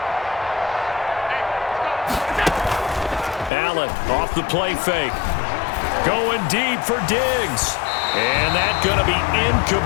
Allen off the play fake. Going deep for Diggs. And that's going to be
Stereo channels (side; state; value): right; drops out; at 3.5 s